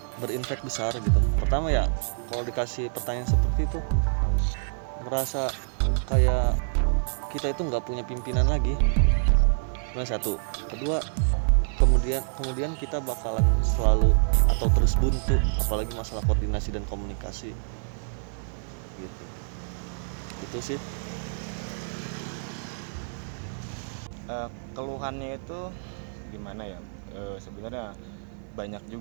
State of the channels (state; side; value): silent; left; 60 dB below the other